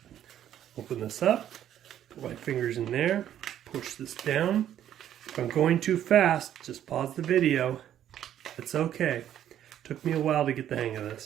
Open this up, put my fingers in there, push this down. If I'm going too fast, just pause the video. It's okay. Took me a while to get the hang of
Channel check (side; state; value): left; quieter; 10.9 dB